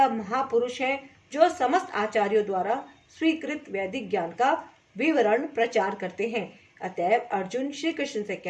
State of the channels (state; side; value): identical; both; correlation 1.00